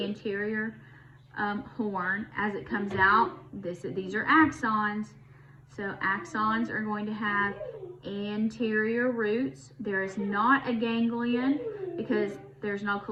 anterior horn. As it comes out, these are axons. So axons are going to have anterior roots. There is not a ganglion because there's no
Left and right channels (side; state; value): both; identical; correlation 1.00